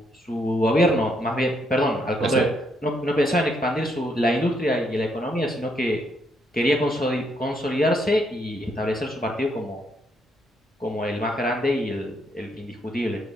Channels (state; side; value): normal; both; correlation 0.74